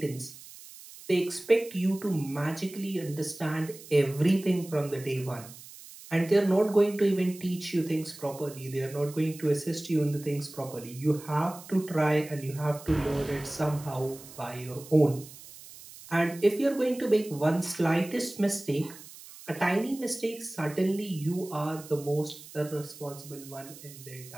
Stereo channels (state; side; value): noise; right; hiss, 17 dB below the sound